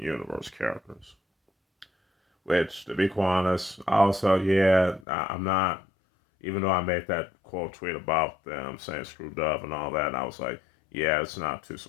Universe characters. Which, to be quite honest, also, yeah, I'm not, even though I made that quote tweet about them saying screw Dove and all that, and I was like, yeah, it's not too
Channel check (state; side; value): drops out; right; at 5.1 s